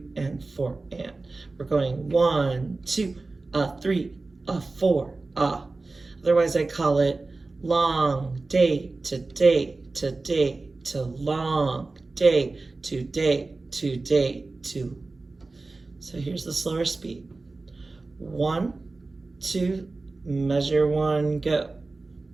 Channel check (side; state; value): left; quieter; 3.5 dB